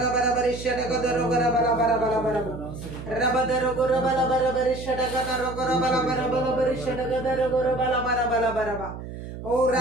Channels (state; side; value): noise; right; hum, 10 dB below the sound